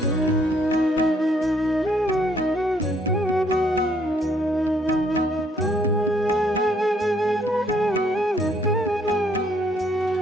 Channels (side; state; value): both; normal; correlation 0.66